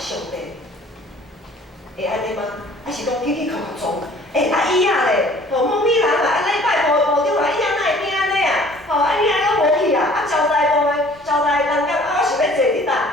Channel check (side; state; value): both; normal; correlation 0.52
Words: 帝。会安尼吗？还是讲起起靠靠撞？椅仔咧，某米人啊，礼拜部长啊，椅仔哪会变安尼啊？椅仔拢无去啊，交代部的交代人讲我想要坐伫